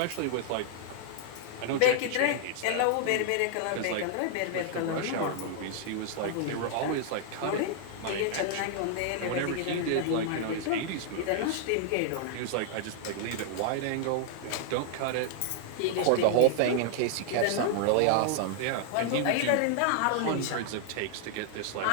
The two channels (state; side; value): different; both; correlation -0.01